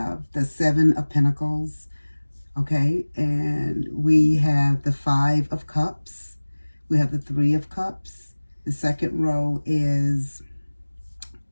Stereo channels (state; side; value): inverted; both; correlation -1.00